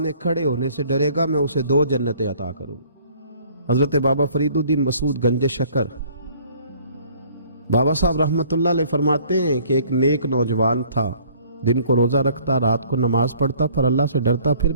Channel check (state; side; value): inverted; both; correlation -0.56